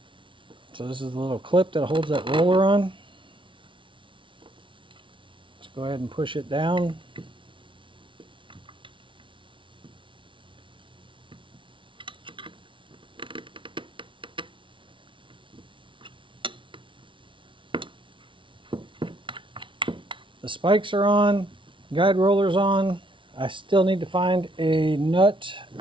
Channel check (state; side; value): late; left; 0.25 ms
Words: So this is the little clip that holds that roller on. Let's go ahead and push it down. The spikes are on, guide roller's on. I still need to find a nut